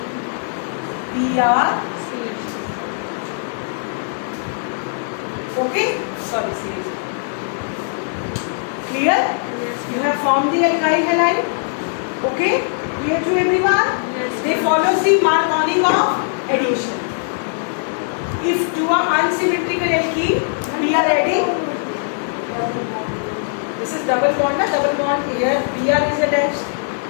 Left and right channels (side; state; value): right; silent; 61 dB below the other